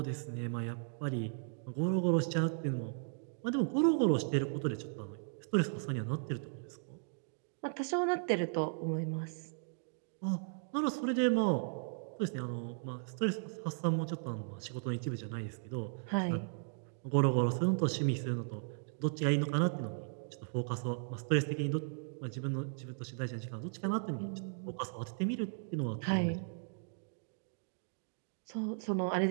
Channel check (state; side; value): silent; left; digital silence